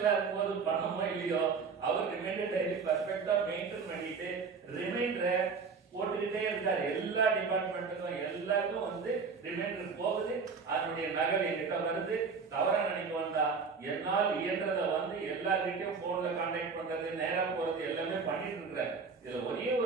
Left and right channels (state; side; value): quieter; left; 5.2 dB